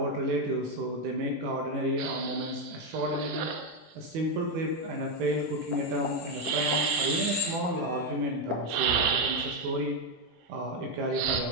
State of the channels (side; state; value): left; late; 18 ms